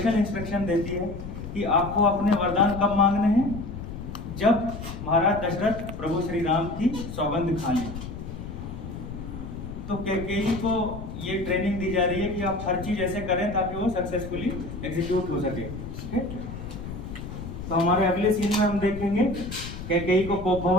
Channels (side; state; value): left; noise; rumble, 9 dB below the sound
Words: इंस्ट्रक्शन देती है कि आपको अपने वरदान कब मांगने हैं, जब महाराज दशरथ प्रभु श्री राम की सौगंध खा लें। तो कैकेयी को ये ट्रेनिंग दी जा रही है कि आप हर चीज ऐसे करें ताकि वो सक्सेसफुली एग्जीक्यूट हो सके। तो हमारे अगले सीन में हम देखेंगे कैकेयी को कोप